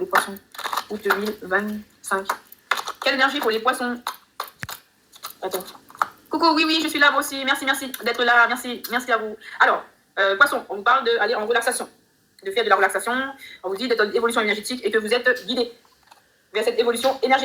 les poissons? Août 2025. Quelle énergie pour les poissons? Attends. Coucou, oui, je suis là, moi aussi. Merci d'être là. Merci à vous. Alors, poissons, on vous parle d'aller en relaxation, de faire de la relaxation. On vous dit d'être en évolution énergétique et que vous êtes guidé vers cette évolution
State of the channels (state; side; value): identical; both; correlation 1.00